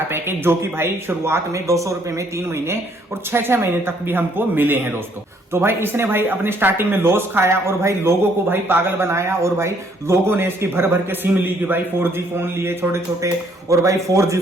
पैकेज, जो कि भाई शुरुआत में 200 रुपए में 3 महीने और 6-6 महीने तक भी हमको मिले हैं दोस्तों। तो भाई इसने भाई अपने स्टार्टिंग में लॉस खाया और भाई लोगों को भाई पागल बनाया। और भाई लोगों ने इसकी भर भर के सिम ली कि भाई 4G फोन लिए छोटे छोटे, और भाई 4G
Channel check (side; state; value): both; normal; correlation 0.65